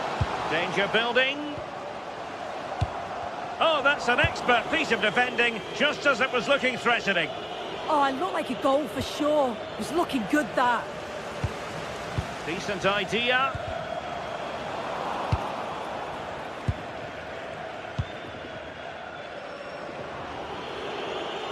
Danger building. Oh, that's an expert piece of defending, just as it was looking threatening. Oh, it looked like a goal for sure. It was looking good, that. Decent idea.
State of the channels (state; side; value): identical; both; correlation 1.00